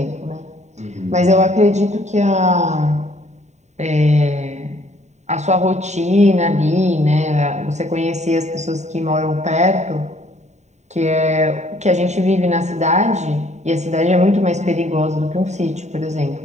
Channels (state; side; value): late; left; 0.33 ms